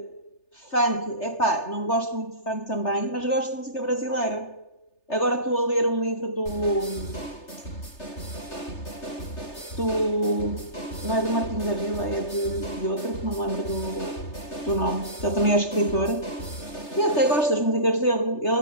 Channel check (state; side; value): late; right; 3.3 ms